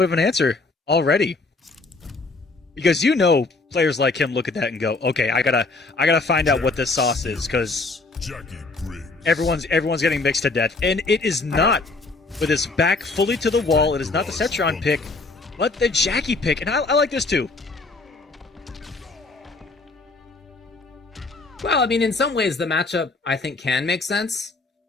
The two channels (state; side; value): quieter; right; 3.6 dB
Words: of an answer already. Because you know, players like him look at that and go, "Okay, I gotta find out what this sauce is," because Jackie Briggs. everyone's getting mixed to death, and it is not with his back fully to the wall. It is not the Cetron pick, but the Jackie pick, and I like this too. Well, I mean, in some ways, the matchup, I think, can make sense.